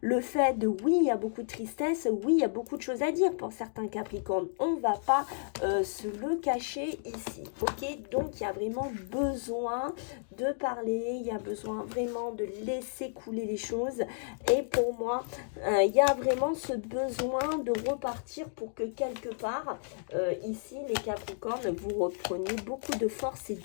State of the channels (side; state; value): right; silent; digital silence